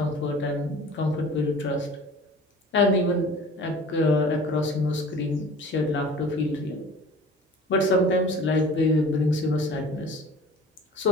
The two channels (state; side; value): normal; both; correlation 0.43